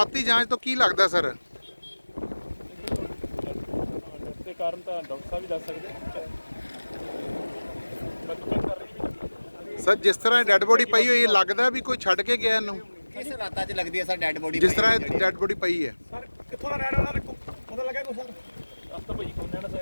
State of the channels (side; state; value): both; inverted; correlation -1.00